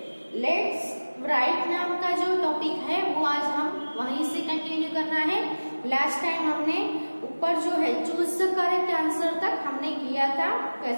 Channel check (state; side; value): inverted; both; correlation -1.00